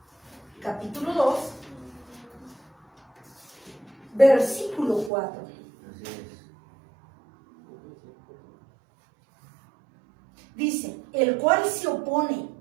capítulo 2, versículo 4. Así es. Dice, el cual se opone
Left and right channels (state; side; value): drops out; left; at 5.1 s